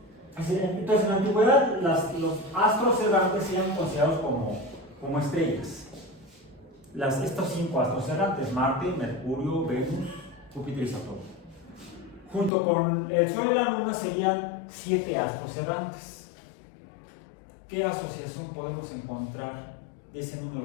Entonces, en la antigüedad, los astros errantes eran considerados como estrellas. Estos 5 astros errantes: Marte, Mercurio, Venus, Júpiter y Saturno. Junto con el Sol y la Luna serían 7 astros errantes. ¿Qué asociación podemos encontrar de ese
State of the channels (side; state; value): right; drops out; at 12.5 s